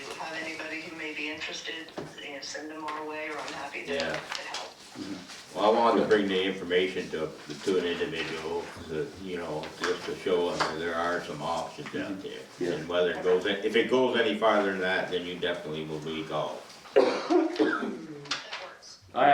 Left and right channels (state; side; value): identical; both; correlation 1.00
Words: have anybody who may be interested, send them our way, or I'm happy to Yeah. help. Well, I wanted to bring the information to an individual, just to show them that there are some options out there. Yeah. And whether it goes, if it goes any farther than that, then you definitely will be called. That works. I